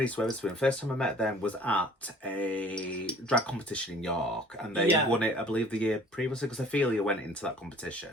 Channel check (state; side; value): normal; both; correlation 0.51